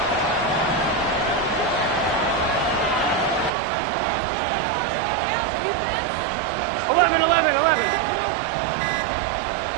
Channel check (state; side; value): drops out; left; at 3.5 s